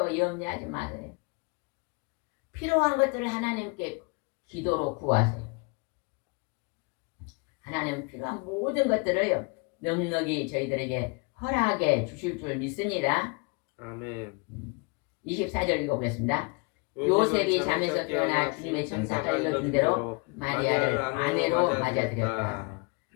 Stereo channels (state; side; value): quieter; right; 31.0 dB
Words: 염려하지 마세요. 필요한 것들을 하나님께 기도로 구하세요. 하나님 필요한 모든 것들을 넉넉히 저희들에게 허락해 주실 줄 믿습니다. 아멘. 24절 읽어보겠습니다. 요셉이 잠에서 깨어나 주님의 천사가 일러준 대로 마리아를 아내로 맞아들였다.